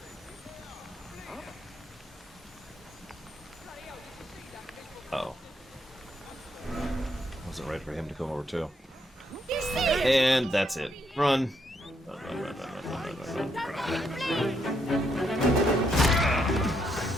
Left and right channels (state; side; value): normal; both; correlation 0.76